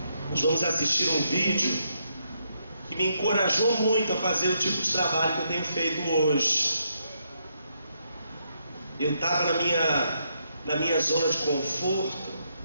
Nós vamos assistir um vídeo que me encorajou muito a fazer o tipo de trabalho que eu tenho feito hoje. Eu estava na minha zona de conforto,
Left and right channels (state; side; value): inverted; both; correlation -0.77